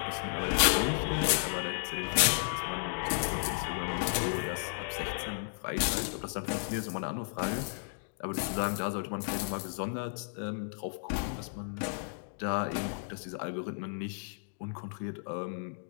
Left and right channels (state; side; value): silent; right; digital silence